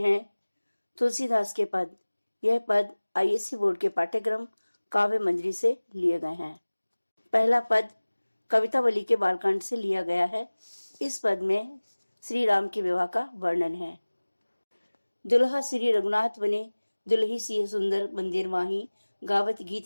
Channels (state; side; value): inverted; both; correlation -1.00